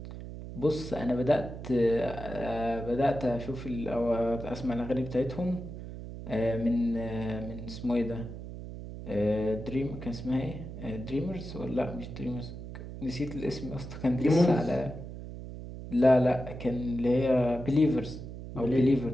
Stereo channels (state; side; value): noise; right; hum, 10 dB below the sound